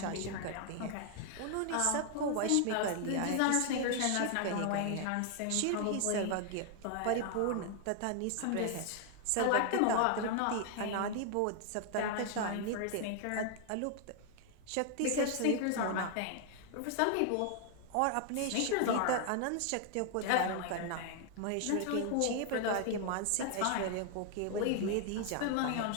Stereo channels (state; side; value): different; both; correlation 0.00